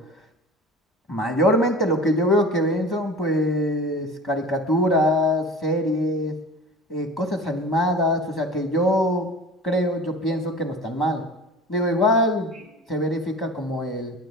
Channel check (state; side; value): normal; both; correlation 0.38